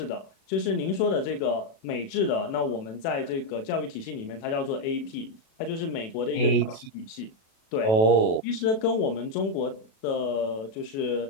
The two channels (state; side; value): late; right; 36 ms